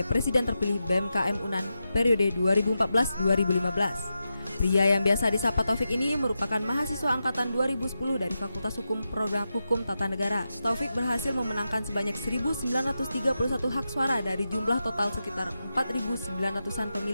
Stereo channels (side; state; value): both; inverted; correlation -0.89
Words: Presiden terpilih BMKM UNAN periode 2014-2015. Pria yang biasa disapa Taufik ini merupakan mahasiswa angkatan 2010 dari Fakultas Hukum Program Hukum Tata Negara. Taufik berhasil memenangkan sebanyak 1.931 hak suara dari jumlah total sekitar 4.900-an